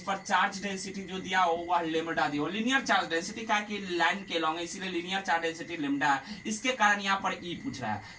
पर चार्ज डेंसिटी जो दिया हो वह लेमडा दिया हो, लीनियर चार्ज डेंसिटी का कि लाइन के लॉन्ग है, इसीलिए लीनियर चार्ज डेंसिटी लेमडा है, इसके कारण यहाँ पर ई पूछ रहा है।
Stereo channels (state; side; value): identical; both; correlation 1.00